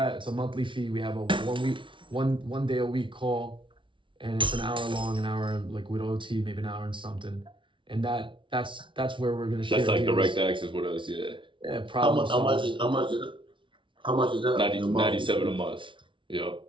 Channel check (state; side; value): late; left; 0.24 ms